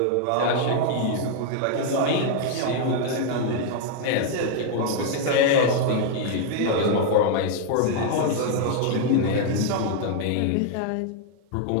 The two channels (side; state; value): both; different; correlation 0.00